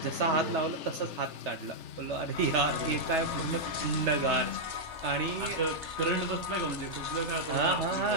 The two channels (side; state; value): left; late; 3.3 ms